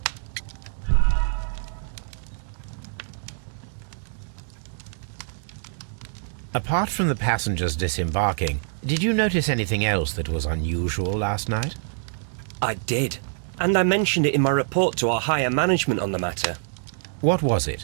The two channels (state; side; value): silent; left; digital silence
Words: Apart from the passengers disembarking, did you notice anything else that was unusual last night? I did. And I mentioned it in my report to our higher management on the matter. What was